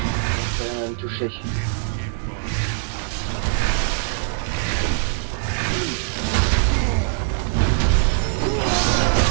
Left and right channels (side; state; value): left; silent; digital silence